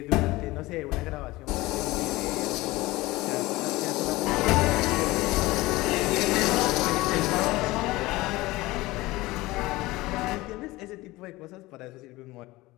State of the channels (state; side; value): quieter; right; 19.8 dB